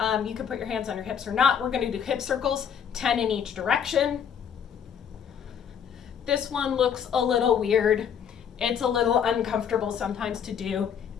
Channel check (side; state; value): right; quieter; 7.9 dB